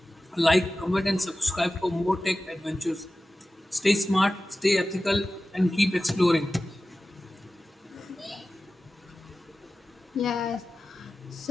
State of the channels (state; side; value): normal; both; correlation 0.95